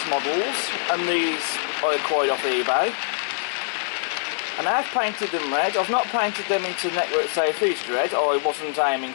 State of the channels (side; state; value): right; silent; digital silence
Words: Models, and these I acquired off eBay. And I've painted them red. I've not painted them into Network Safe East red. I wasn't aiming